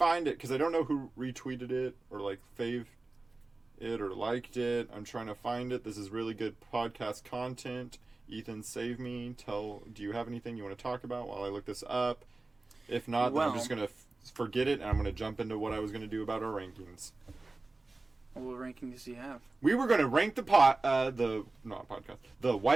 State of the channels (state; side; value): quieter; left; 3.3 dB